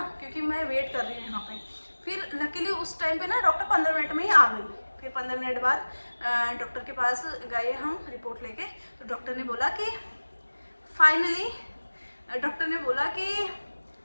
क्योंकि मैं वेट कर रही हूँ यहाँ पे। फिर लकीली उस टाइम पे ना डॉक्टर 15 मिनट में ही आ गई। फिर 15 मिनट बाद डॉक्टर के पास गए हम रिपोर्ट लेके, तो डॉक्टर ने बोला कि फाइनली डॉक्टर ने बोला कि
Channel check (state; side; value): inverted; both; correlation -1.00